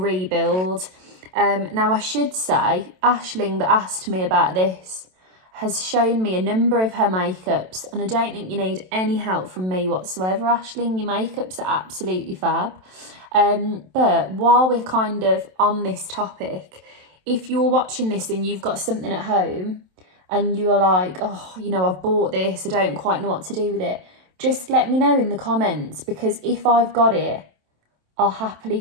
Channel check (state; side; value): late; left; 27 ms